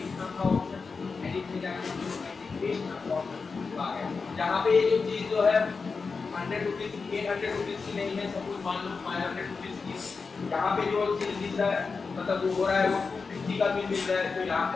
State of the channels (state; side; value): quieter; right; 4.7 dB